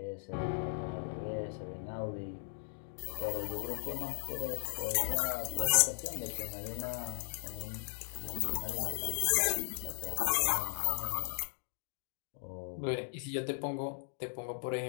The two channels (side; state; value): right; silent; digital silence